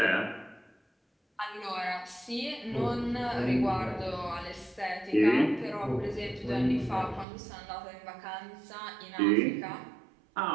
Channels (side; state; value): left; drops out; at 7.2 s